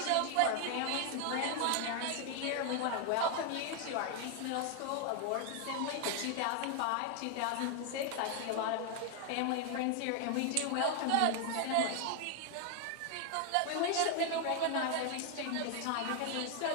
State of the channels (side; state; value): both; different; correlation 0.00